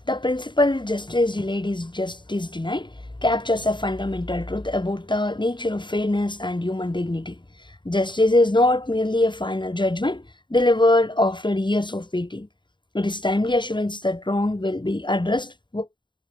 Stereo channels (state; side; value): late; right; 0.23 ms